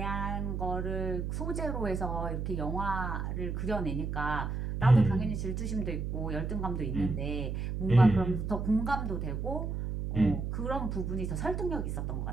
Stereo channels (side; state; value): right; noise; hum, 3 dB below the sound